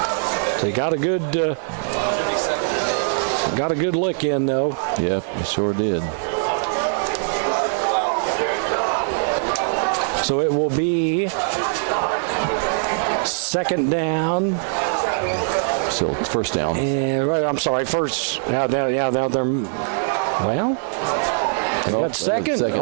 So he got a good look in, though. Yep, he sure did. So it will be second down. So first down. I'm sorry, first. Now they're well. They got second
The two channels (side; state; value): left; silent; digital silence